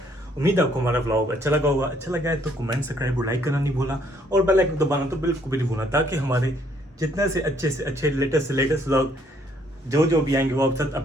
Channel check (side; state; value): both; normal; correlation 0.66